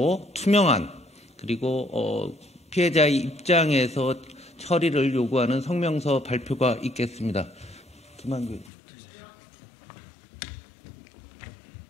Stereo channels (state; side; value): drops out; right; at 8.7 s